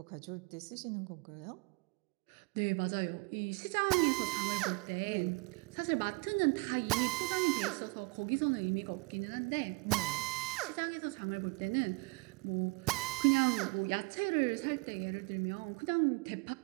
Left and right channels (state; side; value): quieter; left; 28.6 dB